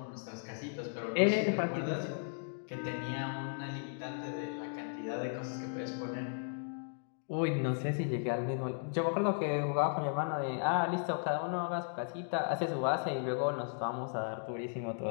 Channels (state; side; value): silent; right; digital silence